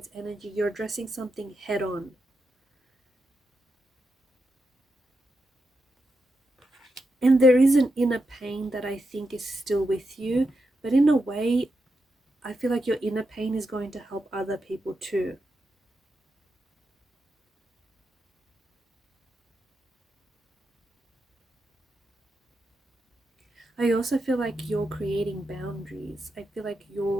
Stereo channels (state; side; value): normal; both; correlation 0.86